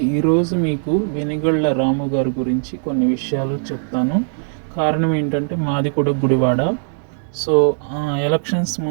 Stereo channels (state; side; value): silent; left; digital silence